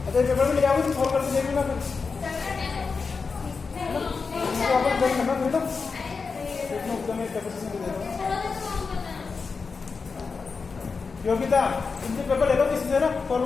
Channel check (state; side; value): quieter; right; 4.8 dB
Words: अच्छा पेपर में ले आओगे तो सॉल्व करके देख लेना फिर। वापस देख करना फिर तो इतना एकदम एक पेपर से दे दो। योगिता इनके पेपर ले लो किसी से ना सॉल्व